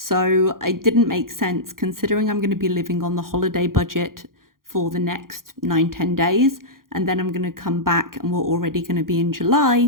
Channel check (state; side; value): late; left; 0.91 ms